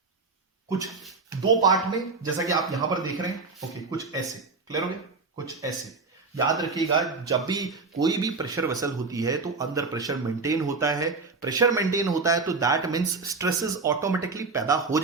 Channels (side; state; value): left; quieter; 4.1 dB